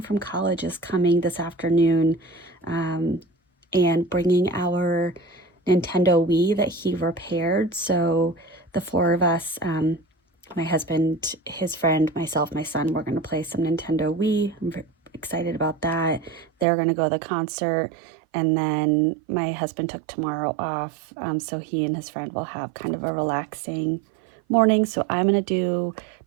from college is coming this afternoon and bringing our Nintendo Wii that he repaired. So the 4 of us, my husband, his friend, myself, my son, we're going to play some Nintendo Wii. I'm very excited about that. They're going to go to the concert. And then my husband took tomorrow off, so he and his friend will have kind of a relaxing morning. So I'm going to do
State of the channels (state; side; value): drops out; left; at 16.7 s